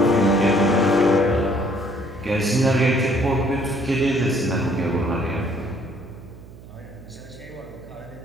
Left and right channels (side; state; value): right; noise; hum, 19 dB below the sound